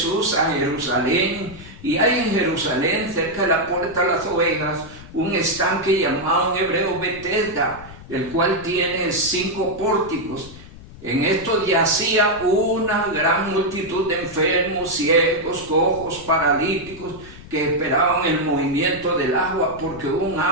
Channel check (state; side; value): noise; left; rumble, 17 dB below the sound